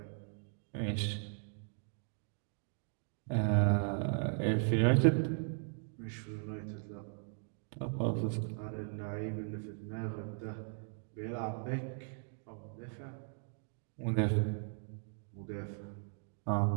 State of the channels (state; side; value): silent; left; 53 dB below the other